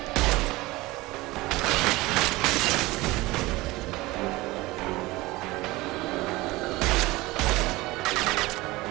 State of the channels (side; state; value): left; quieter; 20.5 dB